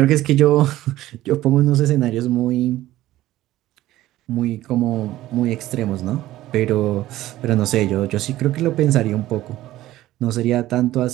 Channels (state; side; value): quieter; left; 15.3 dB